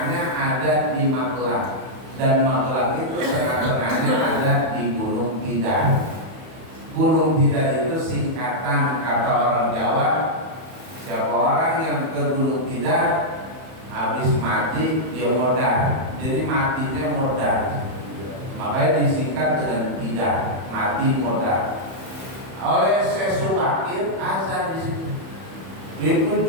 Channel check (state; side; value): late; left; 31 ms